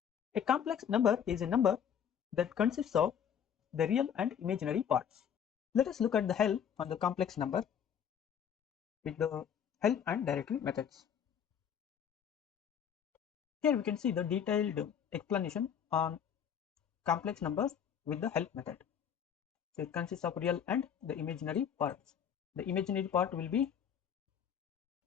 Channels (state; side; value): quieter; right; 8.4 dB